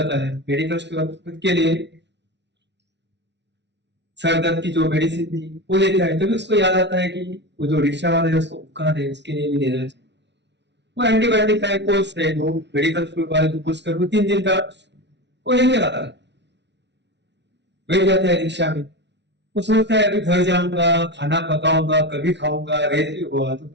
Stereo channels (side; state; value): left; late; 0.51 ms